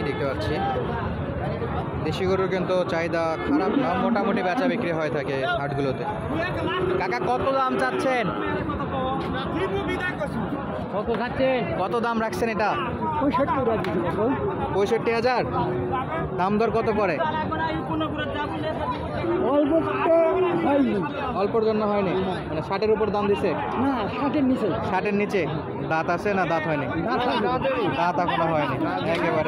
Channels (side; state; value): both; identical; correlation 1.00